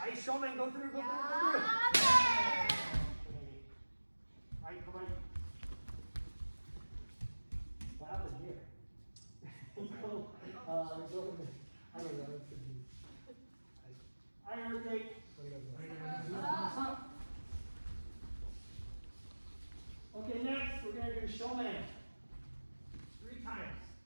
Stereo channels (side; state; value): both; inverted; correlation -1.00